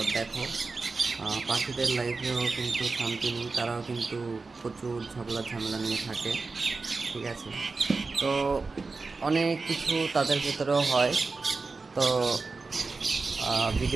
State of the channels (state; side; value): quieter; left; 4.0 dB